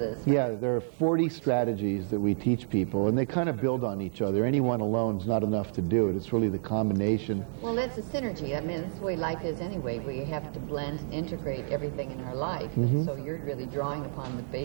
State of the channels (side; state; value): left; silent; digital silence